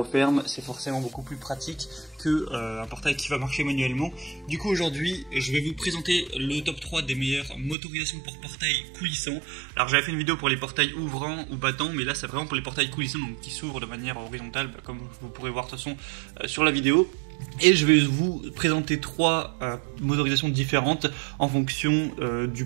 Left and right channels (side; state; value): left; drops out; at 7.8 s